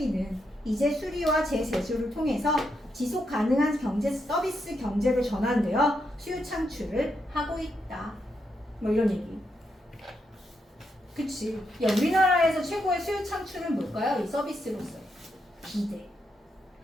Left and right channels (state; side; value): normal; both; correlation 0.81